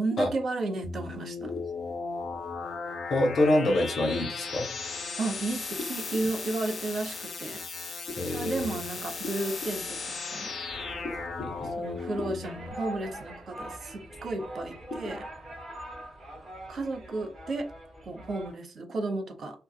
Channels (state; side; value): normal; both; correlation 0.84